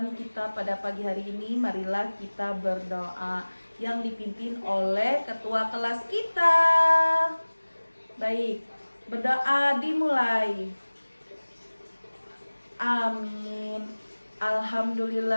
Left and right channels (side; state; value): both; inverted; correlation -1.00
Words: kita pada pagi hari ini, marilah kita berdoa yang dipimpin oleh ketua kelas kita. Baik, berdoa dimulai. Amin.